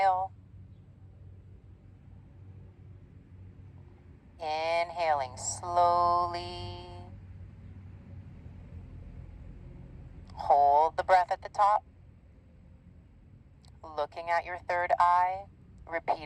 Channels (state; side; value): identical; both; correlation 1.00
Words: Inhaling slowly. Hold the breath at the top. Looking at your third eye.